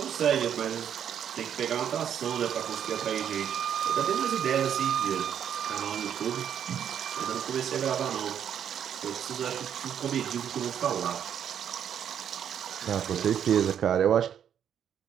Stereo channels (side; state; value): left; quieter; 9.0 dB